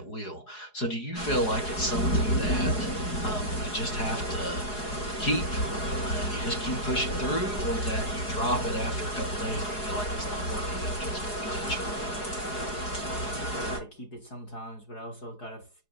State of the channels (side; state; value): right; late; 4.8 ms